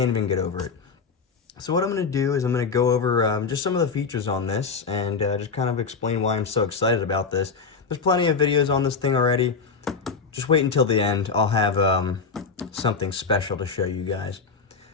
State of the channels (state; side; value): quieter; right; 5.1 dB